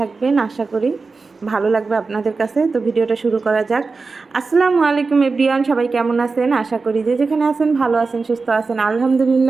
আশা করি ভালো লাগবে আপনাদের কাছে। তো ভিডিওটা শুরু করা যাক। আসসালামু আলাইকুম এভরিওয়ান, সবাই কেমন আছেন? আশা করি যে যেখানে আছেন ভালো আছেন, সুস্থ আছেন।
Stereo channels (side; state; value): left; quieter; 4.2 dB